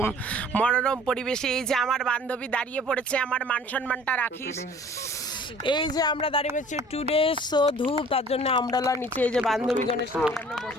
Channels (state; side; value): normal; both; correlation 0.50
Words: মনোরম পরিবেশে। এই যে আমার বান্ধবী দাঁড়িয়ে পড়েছে, আমার মান সম্মানটা রাখিস। এই যে আমরা দাঁড়িয়ে পড়ছি টুডে সো ধূপ, তার জন্য আমরালা নিচে এই যে বান্ধবীগণের সাথে আমরা